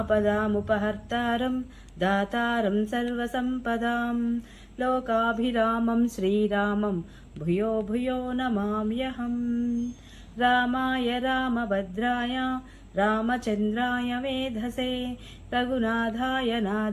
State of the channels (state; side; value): identical; both; correlation 1.00